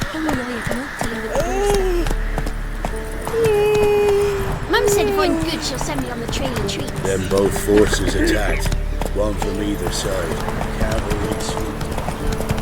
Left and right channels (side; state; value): both; identical; correlation 1.00